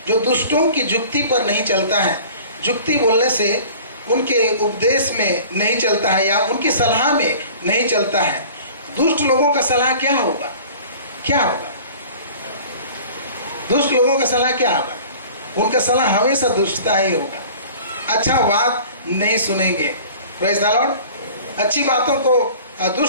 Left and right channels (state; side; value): inverted; both; correlation -0.44